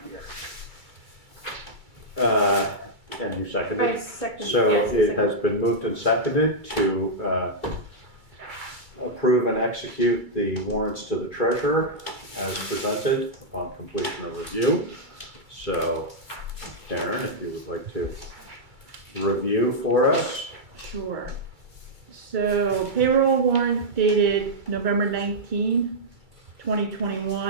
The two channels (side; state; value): left; late; 2.3 ms